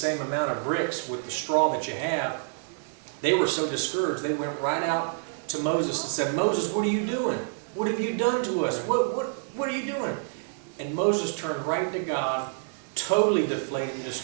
amount of bricks with the straw that you have. They were so discouraged, they went right out to Moses and said, Moses, what are you doing? What have you done to us? What are you doing? And Moses turned right to God, totally deflated and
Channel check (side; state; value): left; silent; 60 dB below the other